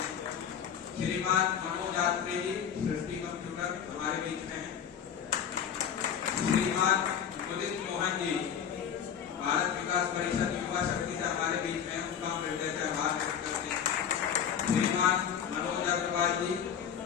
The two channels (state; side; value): quieter; right; 8.3 dB